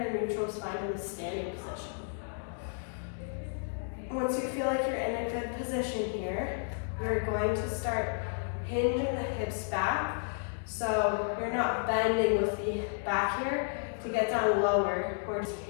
neutral spine in the standing position. Once you feel like you're in a good position here, we're going to start hinging the hips back. So you're not bending with the back here to get down lower. We're just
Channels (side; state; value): right; silent; digital silence